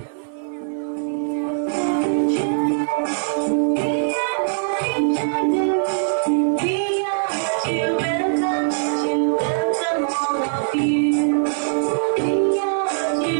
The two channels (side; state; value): left; silent; 65 dB below the other